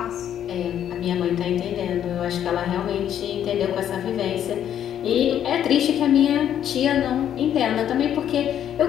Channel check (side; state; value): right; quieter; 10.1 dB